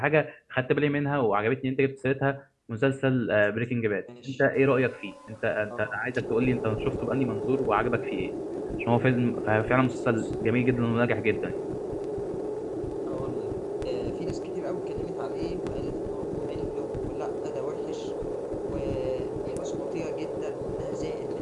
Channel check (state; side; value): identical; both; correlation 1.00